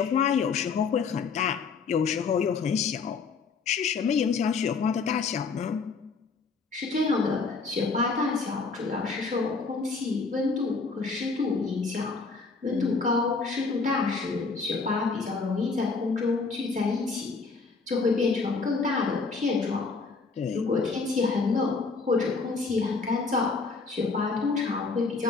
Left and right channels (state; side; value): quieter; right; 4.5 dB